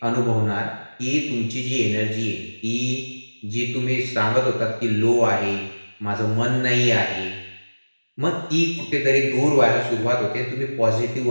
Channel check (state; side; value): inverted; both; correlation -1.00